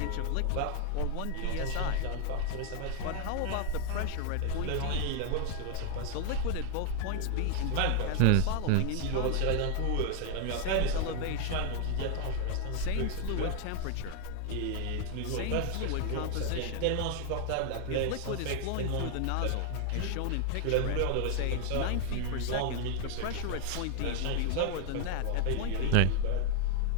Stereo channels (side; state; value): both; different; correlation 0.00